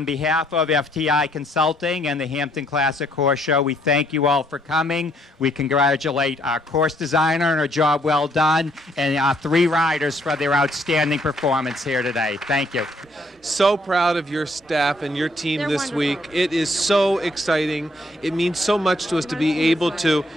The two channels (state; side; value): normal; both; correlation 0.68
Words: behalf of FTI Consulting and the Hampton Classic Horse Show, we thank you all for coming. We congratulate our course designer on a job well done, and our 3 riders for their outstanding performance here today. Thank you. So proud of your staff and your team this week. It is so exciting. It means so much to us to be able to,